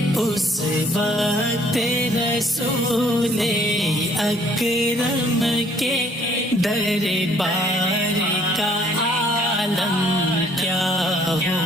اس وقت رسول اکرم کے دربار کا عالم کیا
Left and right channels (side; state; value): both; normal; correlation 0.61